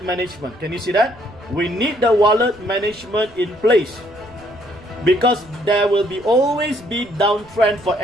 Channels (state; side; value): noise; right; rumble, 25 dB below the sound